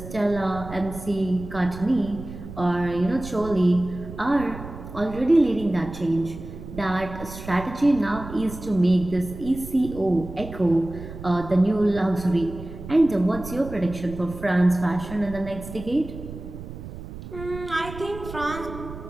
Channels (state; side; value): noise; right; rumble, 12 dB below the sound